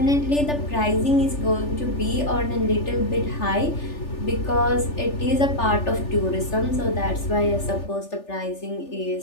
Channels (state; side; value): late; right; 3.4 ms